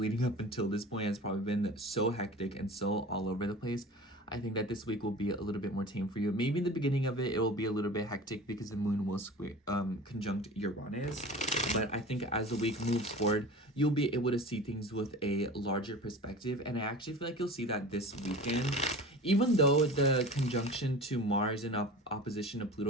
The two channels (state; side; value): normal; both; correlation 0.37